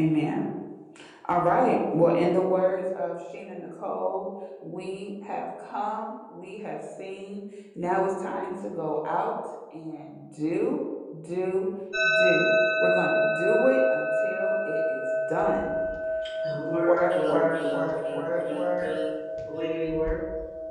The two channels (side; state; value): both; identical; correlation 1.00